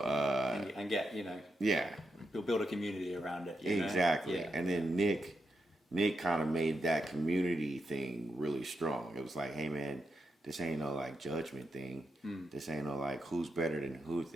and get build a community around it. Exactly. And then Nick kind of made that community thing really strong. It was like, hey man, this ain't no judgment thing. This ain't no who's better than who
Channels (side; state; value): both; normal; correlation 0.84